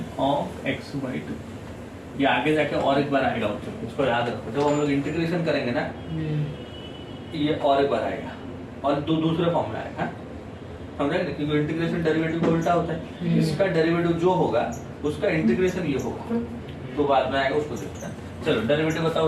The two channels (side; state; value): both; identical; correlation 1.00